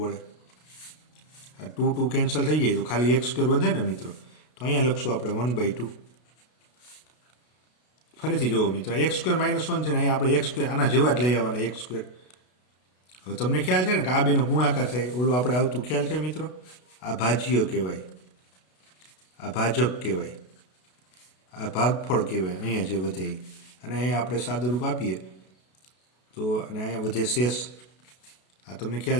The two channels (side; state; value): right; late; 32 ms